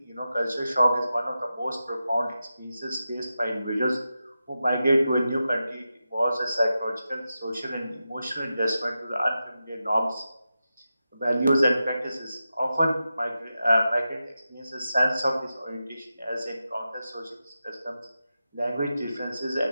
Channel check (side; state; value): both; inverted; correlation -0.91